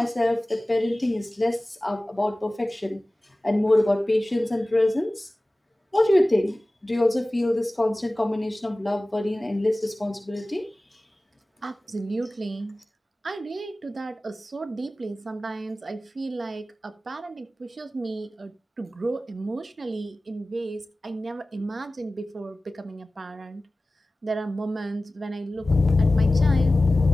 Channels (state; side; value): normal; both; correlation 0.97